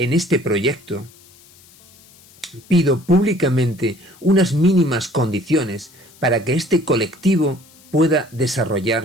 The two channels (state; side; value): noise; left; hiss, 26 dB below the sound